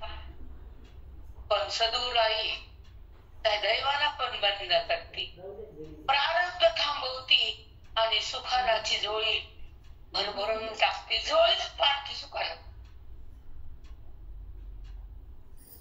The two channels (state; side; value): identical; both; correlation 1.00